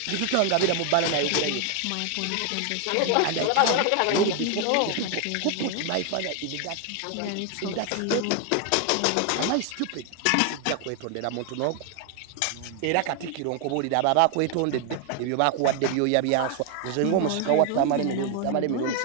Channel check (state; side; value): different; both; correlation 0.01